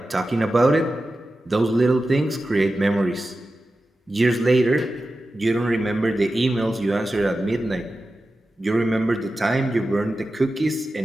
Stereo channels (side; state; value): both; normal; correlation 0.93